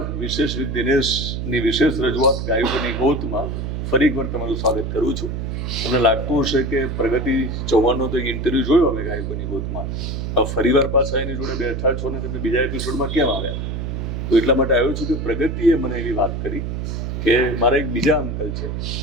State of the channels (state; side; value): noise; right; hum, 3 dB below the sound